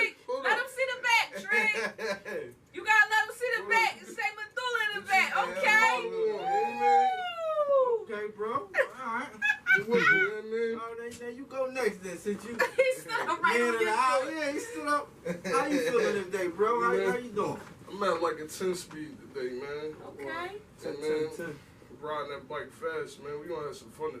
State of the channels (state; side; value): identical; both; correlation 1.00